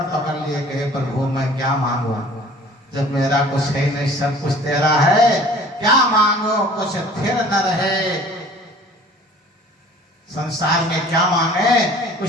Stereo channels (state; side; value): normal; both; correlation 0.49